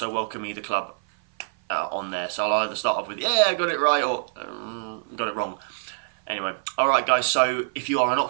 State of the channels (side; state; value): left; silent; 56 dB below the other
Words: welcome either club on there. So I'll either start off with, yeah, I got it right, or got it wrong. Anyway, alright guys, so if you are an